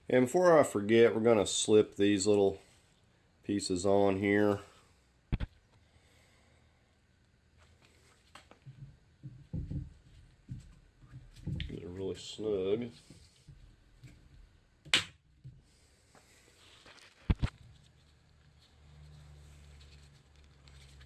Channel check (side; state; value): both; identical; correlation 1.00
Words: And before I forget, we're going to slip these little pieces on here. Get it really snug.